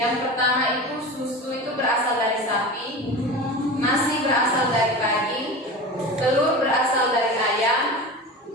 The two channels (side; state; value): both; normal; correlation 0.30